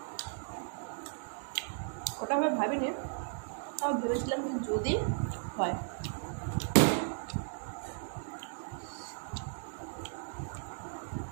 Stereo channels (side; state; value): left; silent; digital silence